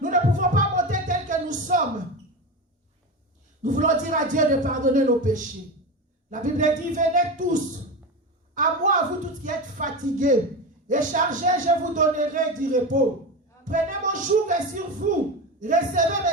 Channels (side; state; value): both; normal; correlation 0.22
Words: Nous ne pouvons pas monter tel que nous sommes. Nous voulons dire à Dieu de pardonner nos péchés. La Bible dit, venez tous, à moi, vous tous qui êtes fatigués et chargés, je vous donnerai du repos. Prenez mon joug sur vous, recevez